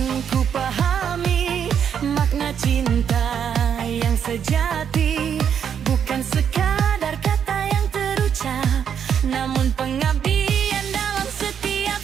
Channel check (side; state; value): left; quieter; 8.1 dB